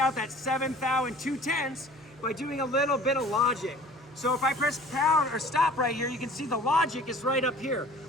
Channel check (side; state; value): both; normal; correlation 0.47